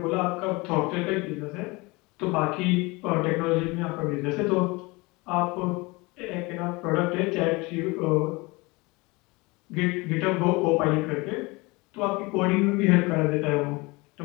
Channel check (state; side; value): quieter; right; 24.6 dB